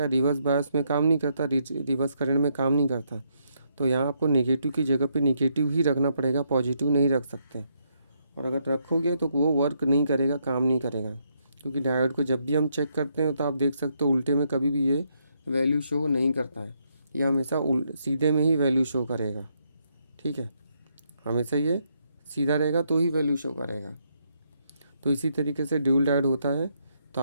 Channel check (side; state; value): both; inverted; correlation -0.76